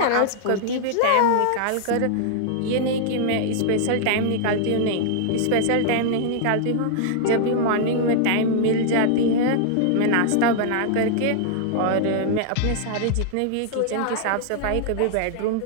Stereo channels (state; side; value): different; both; correlation -0.01